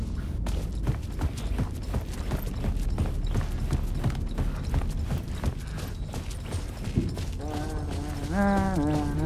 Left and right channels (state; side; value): identical; both; correlation 1.00